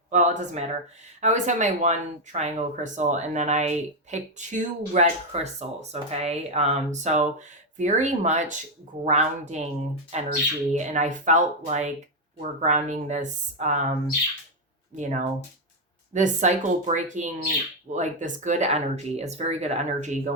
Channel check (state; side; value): normal; both; correlation 0.03